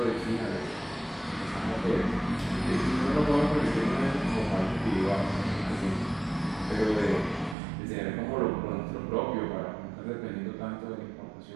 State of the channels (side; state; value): left; drops out; at 7.6 s